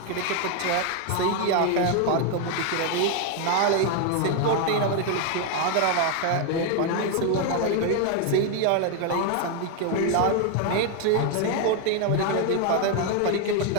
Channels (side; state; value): both; different; correlation 0.01